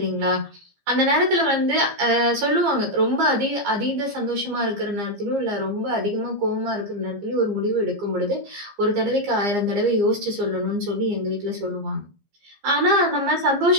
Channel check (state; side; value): late; left; 15 ms